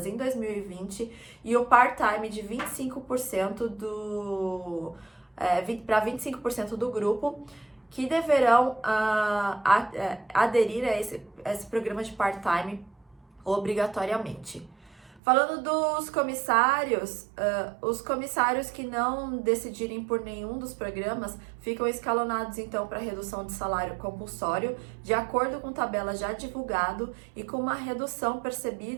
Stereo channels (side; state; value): left; drops out; at 15.2 s